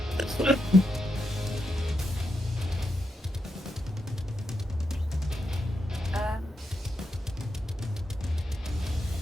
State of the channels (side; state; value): both; normal; correlation 0.84